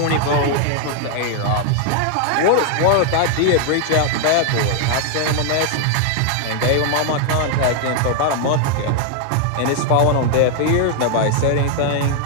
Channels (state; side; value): different; both; correlation 0.00